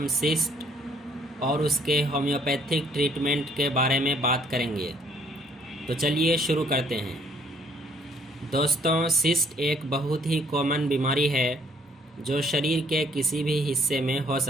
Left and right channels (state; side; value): normal; both; correlation 0.64